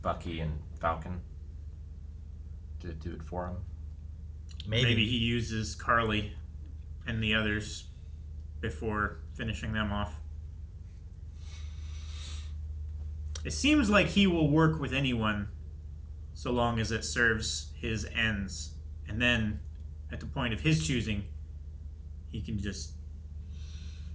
Bucky and Falcon to do it for him. Maybe he uses Carly and the others before finishing them off. It seems like he will work with anyone so long as it serves his ends. And then, at the point of his choosing, he can just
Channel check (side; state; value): both; identical; correlation 1.00